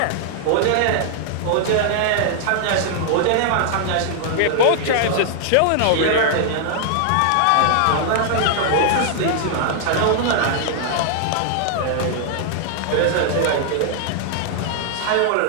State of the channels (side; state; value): both; different; correlation -0.01